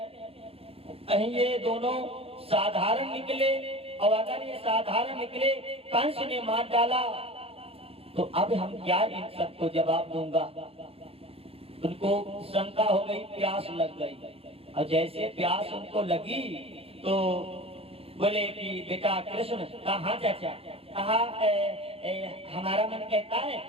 कहीं ये दोनों साधारण निकले, और अगर ये साधारण निकले कंस ने मार डाला तो अब हम क्या इन सबको जवाब दूंगा। उनको शंका हो गई, प्यास लग गई, और जैसे प्यास उनको लगी तो बोले कि बेटा कृष्ण कहाँ चाचा, कहा हमारा मन कहता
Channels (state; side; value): late; left; 0.28 ms